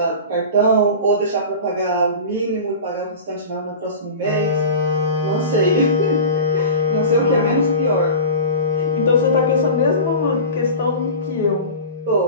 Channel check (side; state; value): both; inverted; correlation -0.33